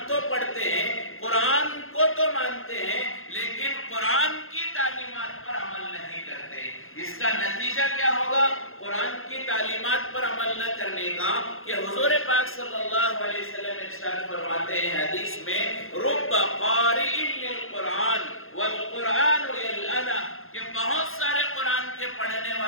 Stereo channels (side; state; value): right; late; 0.60 ms